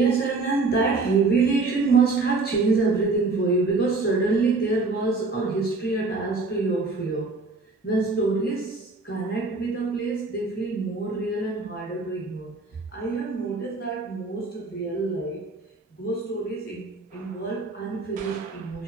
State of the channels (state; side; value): quieter; left; 3.7 dB